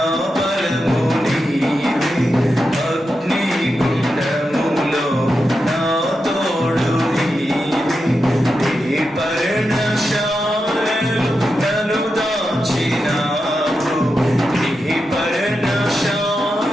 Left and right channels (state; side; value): normal; both; correlation 0.88